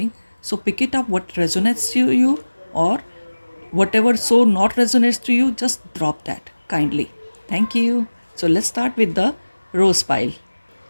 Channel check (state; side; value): inverted; both; correlation -1.00